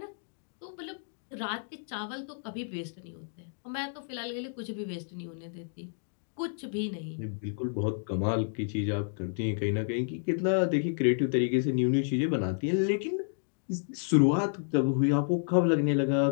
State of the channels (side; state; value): right; silent; digital silence